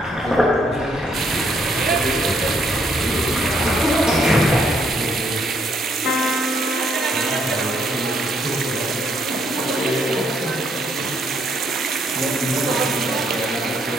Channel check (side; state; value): both; normal; correlation 0.71